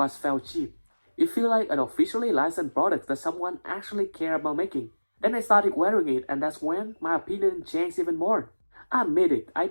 felt cheap. It feels like an officially licensed product that someone actually cared about making. Then I started wearing it, and that's when my opinion changed even more. I admit it, I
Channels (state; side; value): inverted; both; correlation -1.00